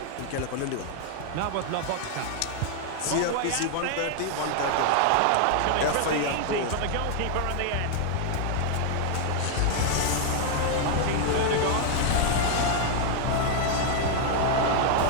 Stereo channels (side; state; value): both; different; correlation 0.00